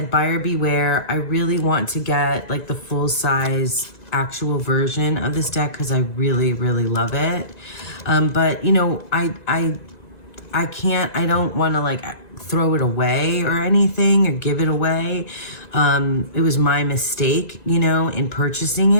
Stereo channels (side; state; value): right; late; 1.9 ms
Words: buyer beware. I really want to get like the full size actual version of this deck because I really, really love it. But I don't want to like throw it away or anything or give it away. It was my mistake, in purchasing